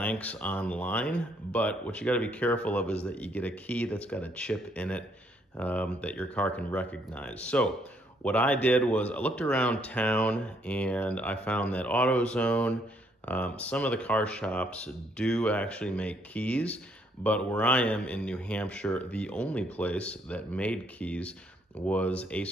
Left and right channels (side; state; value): both; normal; correlation 0.69